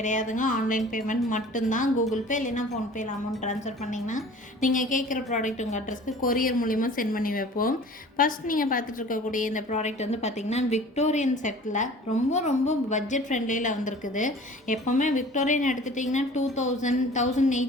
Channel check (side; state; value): both; normal; correlation 0.45